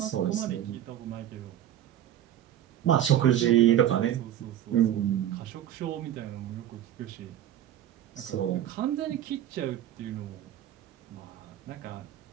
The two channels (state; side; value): quieter; left; 11.5 dB